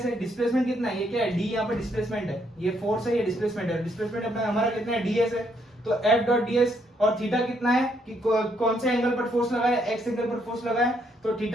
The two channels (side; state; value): both; normal; correlation 0.73